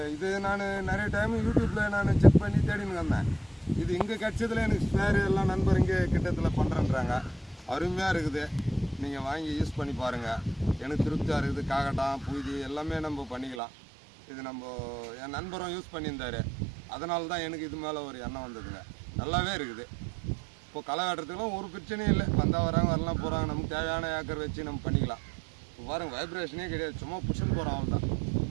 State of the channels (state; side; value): drops out; left; at 13.6 s